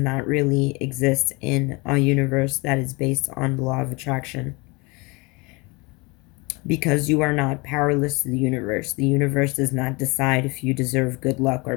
really exist in a universe that is based on the law of attraction, because you are not powerless to the universe. The universe does not decide if you deserve good luck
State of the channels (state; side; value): quieter; right; 26.8 dB